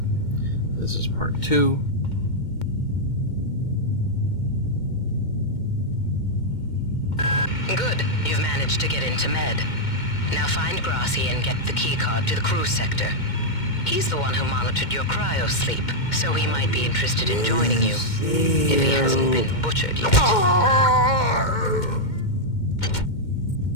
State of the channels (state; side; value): late; right; 2.2 ms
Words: This is part 2. Good. You've managed to get into Med. Now find Grassi and get the keycard to the cruise sector. He's the one who monitored your cryo-sleep, so he might be interested in joining you. If he hasn't been butchered yet.